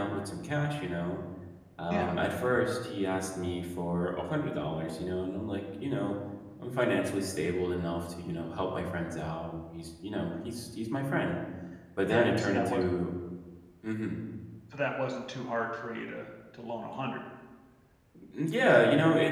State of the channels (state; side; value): identical; both; correlation 1.00